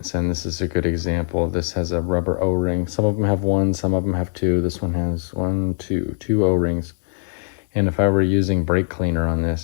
and this is a good example. This has a rubber O-ring. Some of them have one, some of them have two. This one has two O-rings. And if I were using brake cleaner on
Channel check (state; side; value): silent; right; digital silence